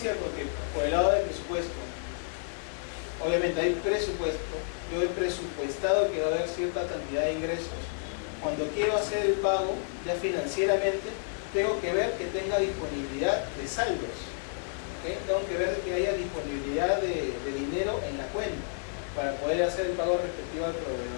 que por el lado del presupuesto, obviamente hay presupuesto, yo he presupuestado que va a haber cierta cantidad de ingresos, cuando quiero hacer el pago, ya financieramente, tengo que ver que tenga disponibilidad de saldos. ¿Okay? Tengo que ver que haya disponibilidad de dinero en la cuenta para poder hacer el pago respectivo al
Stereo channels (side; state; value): right; silent; digital silence